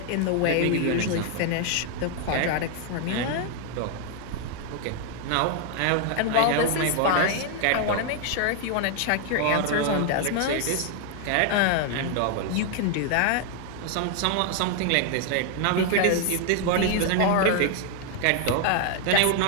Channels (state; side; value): different; both; correlation 0.00